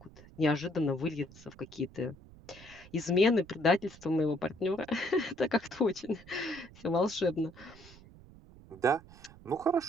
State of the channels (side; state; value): right; noise; rumble, 21 dB below the sound